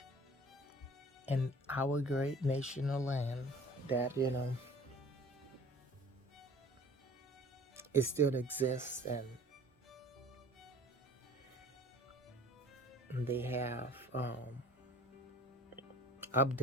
in our great national land that, it still exists, and they have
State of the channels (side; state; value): both; normal; correlation 0.48